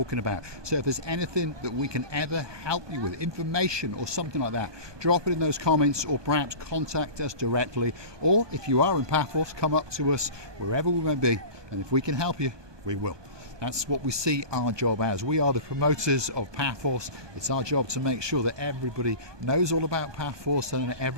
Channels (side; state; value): left; late; 1.2 ms